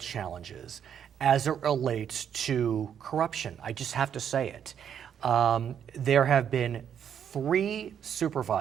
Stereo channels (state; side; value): quieter; left; 8.7 dB